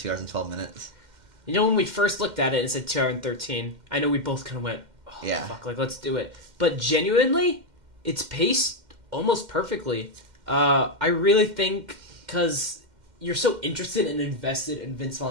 hours and 12 minutes? You know, when we first looked at it, it said 2 hours and 13. I know we both kind of went, oh, fuck, like, let's do it. But genuinely, it's paced almost perfectly. I really think, because you're so interested and invested in Vince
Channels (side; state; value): left; late; 2.1 ms